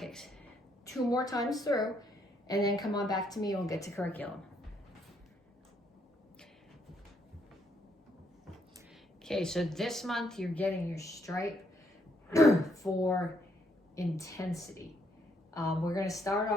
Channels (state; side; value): normal; both; correlation 0.73